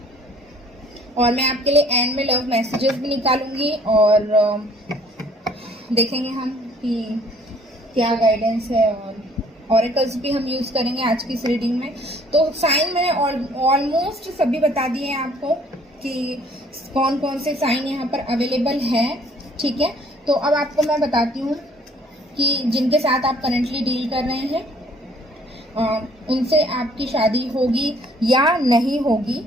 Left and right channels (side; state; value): both; normal; correlation 0.58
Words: और मैं आपके लिए एंड में लव मैसेजेस भी निकालूंगी और देखेंगे हम कि क्या गाइडेंस है, और ऑरेकल्स भी हम यूज करेंगे आज की इस रीडिंग में। तो साइन मैंने ऑलमोस्ट सभी बता दिए हैं आपको कि कौन कौन से साइन यहाँ पर अवेलेबल है, ठीक है? तो अब आपको मैं बताती हूँ कि जिनके साथ आप करेंटली डील कर रहे हैं उनसे आपकी शादी होगी या नहीं होगी,